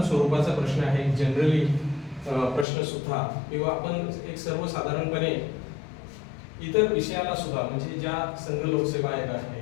स्वरूपाचा प्रश्न आहे, जनरली प्रश्न सुद्धा किंवा आपण एक सर्वसाधारणपणे इतर विषयाला सुद्धा म्हणजे ज्या संघ लोकसेवा आयोग आहे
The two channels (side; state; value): right; drops out; at 2.7 s